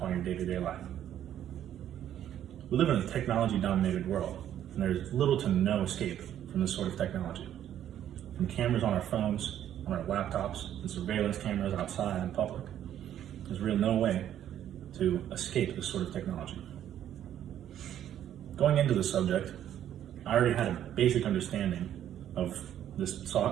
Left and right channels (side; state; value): left; quieter; 10.9 dB